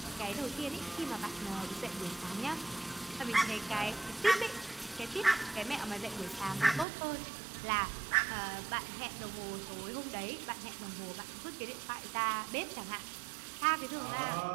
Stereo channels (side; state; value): left; drops out; at 6.9 s